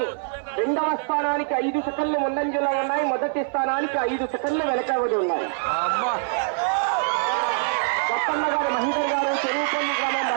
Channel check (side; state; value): left; silent; 58 dB below the other